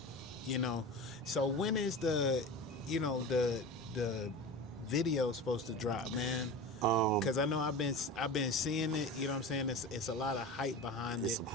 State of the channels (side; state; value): both; normal; correlation 0.31